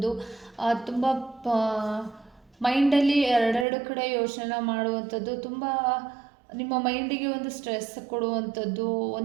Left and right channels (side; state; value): left; drops out; at 3.7 s